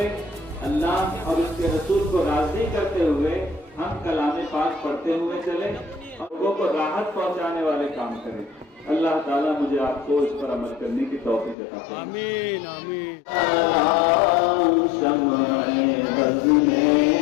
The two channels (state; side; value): drops out; right; at 11.6 s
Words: اللہ اور اس کے رسول کو راضی کرتے ہوئے ہم کلام پاک پڑھتے ہوئے چلیں اور لوگوں کو راحت پہنچانے والے کام کریں. اللہ تعالیٰ مجھے آپ کو اس پر عمل کرنے کی توفیق عطا فرمائے. آمین آمین. شمع بز میں